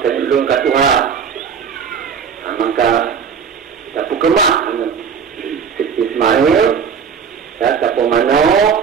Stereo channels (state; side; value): quieter; left; 6.7 dB